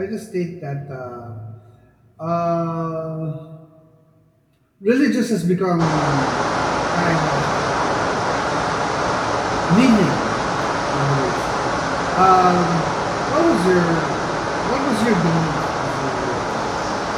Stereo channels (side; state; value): both; identical; correlation 1.00